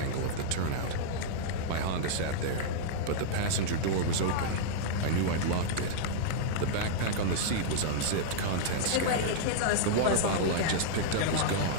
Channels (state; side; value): different; both; correlation -0.02